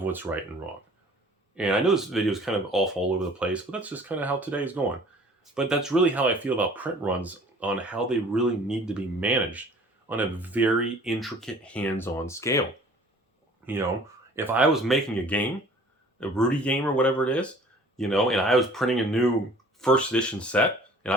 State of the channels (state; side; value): normal; both; correlation 0.51